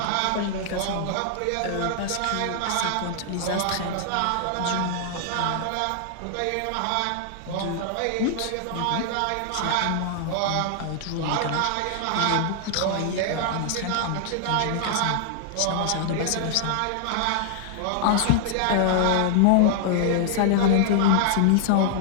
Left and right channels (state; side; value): different; both; correlation -0.01